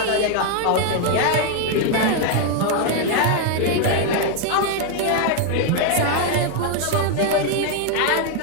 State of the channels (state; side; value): different; both; correlation 0.00